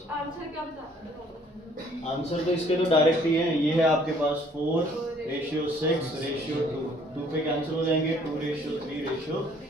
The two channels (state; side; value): normal; both; correlation 0.60